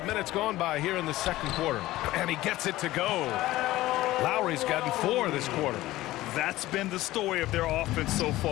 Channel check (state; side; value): quieter; right; 16.7 dB